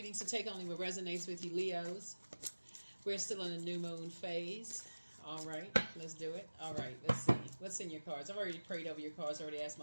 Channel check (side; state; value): both; inverted; correlation -1.00